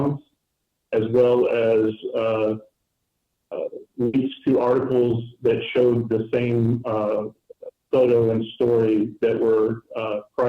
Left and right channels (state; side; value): identical; both; correlation 1.00